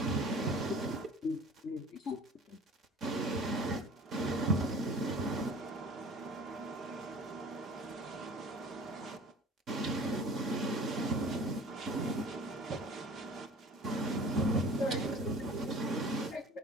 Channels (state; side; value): normal; both; correlation 0.44